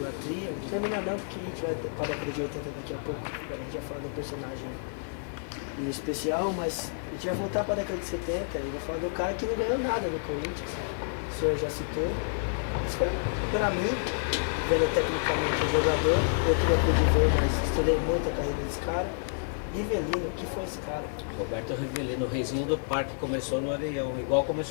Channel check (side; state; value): right; silent; digital silence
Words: terminar não, porque a gente vai para a década de 80 daqui a pouco, a gente vai falar do personagem em especial, mas a gente vai voltar para a década de 70 e vai falar do cara que não ganhou nada no Corinthians, o senhor já citou. Mas para mim, vendo tecnicamente o jogador, eu queria poder ver, mas estudei muito a carreira desse cara. Rivelino, o que foi esse cara? Roberto Rivelino, o reizinho do parque, começou no Areião, igual